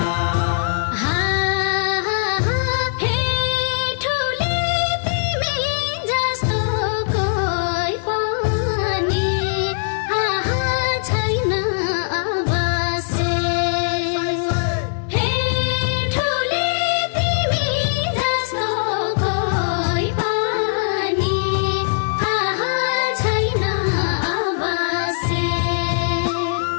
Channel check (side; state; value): right; silent; 58 dB below the other